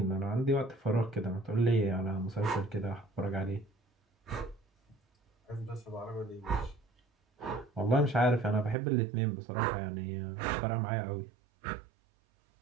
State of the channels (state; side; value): drops out; left; at 8.8 s